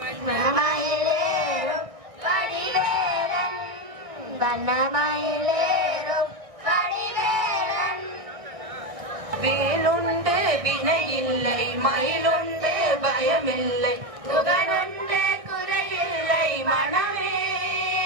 கடிவேலன் வண்ணமயிலேறும் கடிவேலன் வேலுண்டு வினையில்லை மயிலுண்டு பயமில்லை புகனுண்டு குறையில்லை மனமே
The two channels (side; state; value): left; late; 1.6 ms